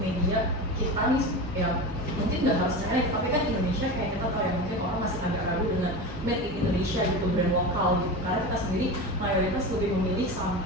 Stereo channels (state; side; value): normal; both; correlation 0.26